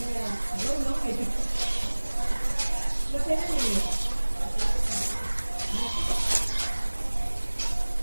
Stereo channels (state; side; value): inverted; both; correlation -1.00